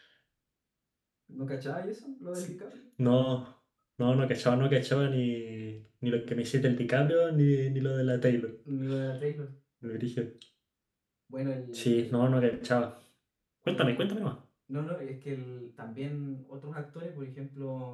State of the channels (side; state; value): both; identical; correlation 1.00